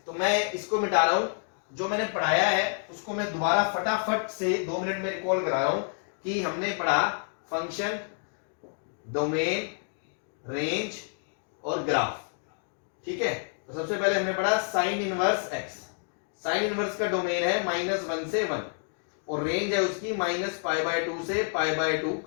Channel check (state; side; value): silent; right; 59 dB below the other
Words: तो मैं इसको मिटा रहा हूं, जो मैंने पढ़ाया है उसको मैं दोबारा फटाफट से 2 मिनट में रिकॉल करा रहा हूं कि हमने पढ़ा फंक्शन, डोमेन, रेंज और ग्राफ। ठीक है, तो सबसे पहले हमने पढ़ा sign inverse x. Sine inverse का डोमेन है -1 से 1 और रेंज है उसकी -π/2 से π/2